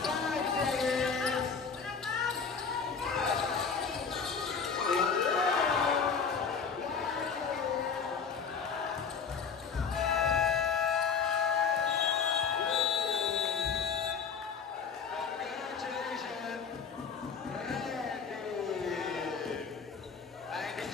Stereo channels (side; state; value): right; quieter; 5.9 dB